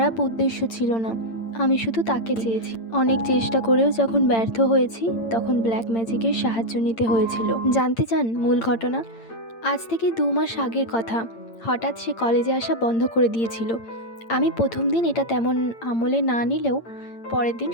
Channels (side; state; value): right; late; 8.8 ms